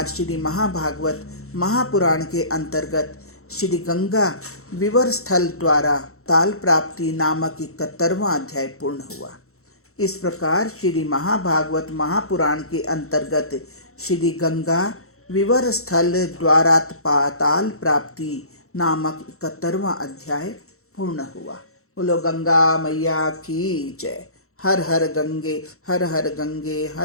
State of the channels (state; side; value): late; right; 0.63 ms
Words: श्री महाभागवत महापुराण के अंतर्गत श्री गंगा विवर स्थल द्वारा ताल प्राप्ति नामक 71वां अध्याय पूर्ण हुआ। इस प्रकार श्री महाभागवत महापुराण के अंतर्गत श्री गंगा विवर स्थल द्वारा पाताल प्राप्ति नामक 71वां अध्याय पूर्ण हुआ। बोलो गंगा मैया की जय। हर हर गंगे, हर हर गंगे,